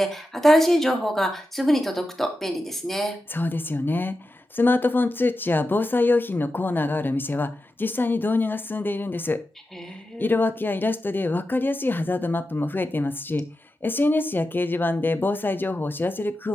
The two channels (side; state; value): both; normal; correlation 0.90